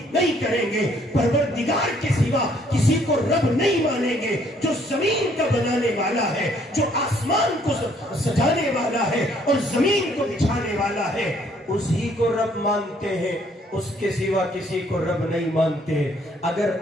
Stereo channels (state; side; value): normal; both; correlation 0.64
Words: نہیں کریں گے، پروردگار کے سوا کسی کو رب نہیں مانیں گے، جو زمین کا بنانے والا ہے، جو آسمان کو سجانے والا ہے اور زمین کو بچھانے والا ہے، اسی کو رب مانتے ہیں، اس کے سوا کسی کو رب نہیں مانتے۔ اگر